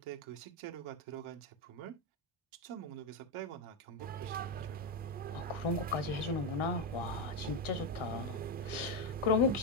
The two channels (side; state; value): both; normal; correlation 0.07